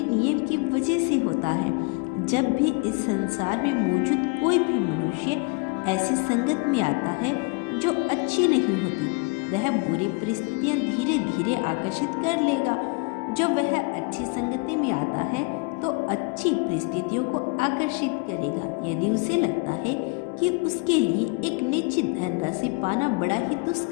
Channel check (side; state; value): right; quieter; 28.9 dB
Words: नियम की वजह से होता है। जब भी इस संसार में मौजूद कोई भी मनुष्य ऐसी संगत में आता है जो अच्छी नहीं होती, वह बुरी परिस्थितियां धीरे धीरे आकर्षित कर लेगा। जब वह अच्छी संगति में आता है तो अच्छी परिस्थितियों को आकर्षित करेगा। यदि उसे लगता है कि उसके लिए एक निश्चित धनराशि पाना बड़ा ही